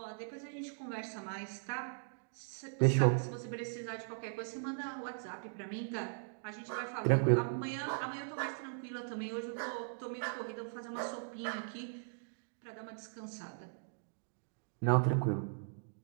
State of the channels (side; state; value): left; silent; digital silence